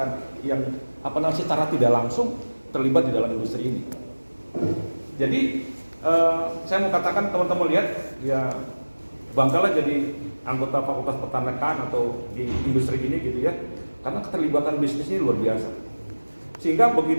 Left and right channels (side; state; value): both; inverted; correlation -1.00